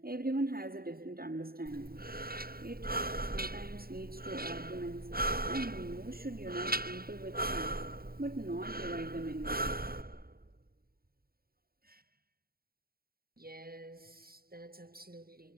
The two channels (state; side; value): late; left; 0.44 ms